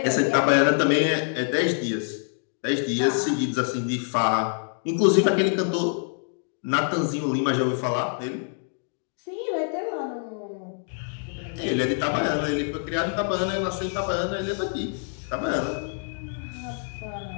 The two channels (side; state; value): right; silent; 61 dB below the other